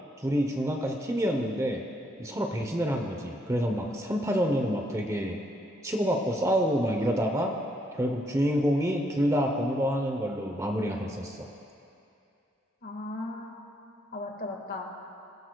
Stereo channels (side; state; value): both; normal; correlation 0.74